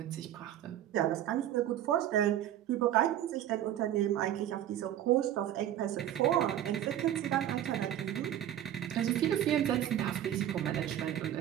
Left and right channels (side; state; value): left; quieter; 11.7 dB